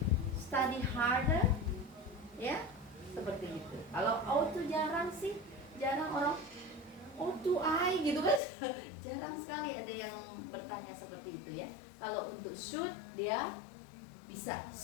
study harder? Ya, seperti itu. Kalau ought to jarang sih, jarang orang ought to I gitu kan. Jarang sekali ada yang bertanya seperti itu ya. Kalau untuk should dia bisa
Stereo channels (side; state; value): right; drops out; at 8.4 s